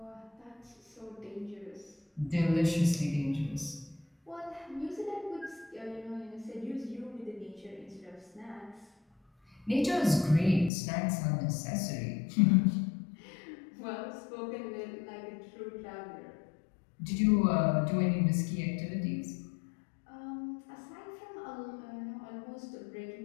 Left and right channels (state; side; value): drops out; right; at 10.7 s